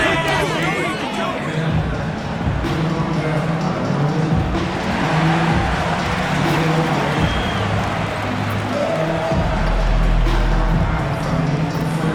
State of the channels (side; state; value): both; identical; correlation 1.00